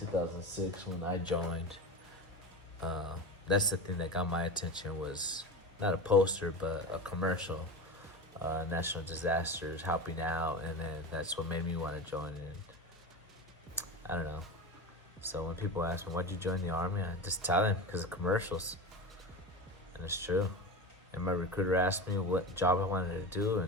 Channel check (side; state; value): both; normal; correlation 0.25